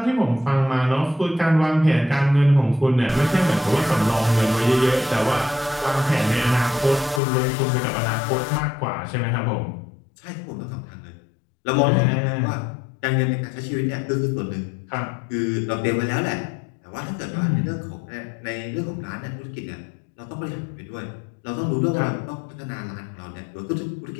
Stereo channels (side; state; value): right; drops out; at 7.2 s